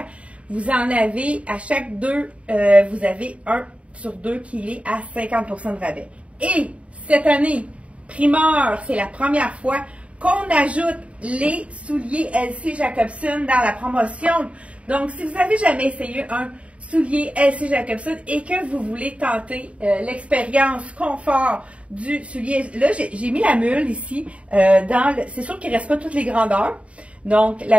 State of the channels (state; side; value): late; left; 0.063 ms